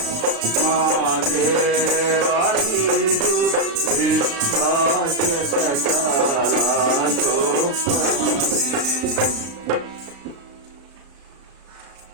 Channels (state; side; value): late; left; 36 ms